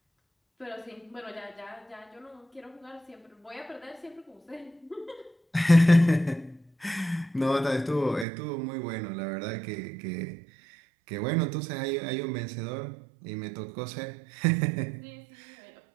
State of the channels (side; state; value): left; drops out; at 8.2 s